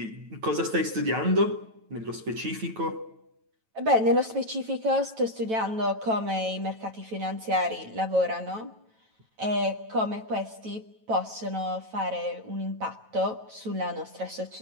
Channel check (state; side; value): late; left; 9.1 ms